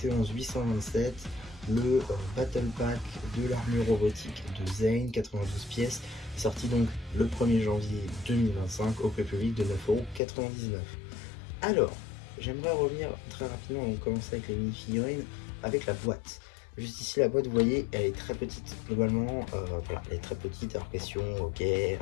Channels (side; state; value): right; drops out; at 10.2 s